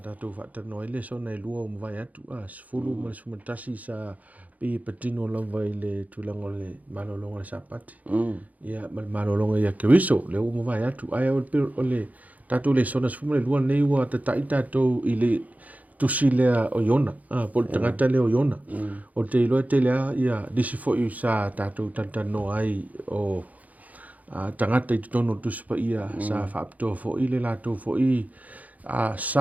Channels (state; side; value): late; left; 0.076 ms